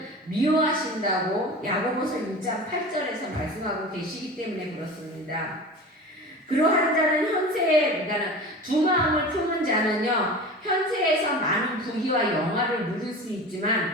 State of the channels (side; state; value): both; normal; correlation 0.34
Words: 미워하신다고 야고보서 1장 8절에서 말씀하고 계시기 때문에 그렇습니다. 그러한 자는 그러니까 두 마음을 품은 자는요, 현세에서 많은 부귀와 영화를 누릴 수